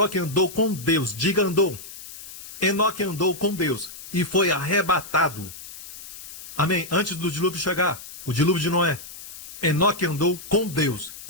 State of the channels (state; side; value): noise; left; hiss, 13 dB below the sound